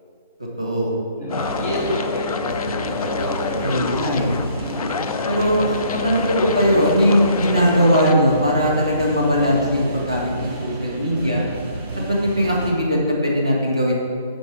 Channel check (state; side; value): inverted; both; correlation -0.63